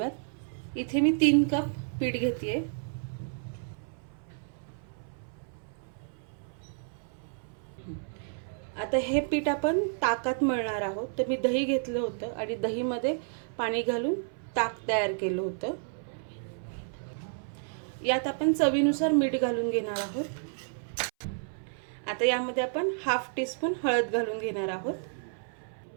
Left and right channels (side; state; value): left; silent; 57 dB below the other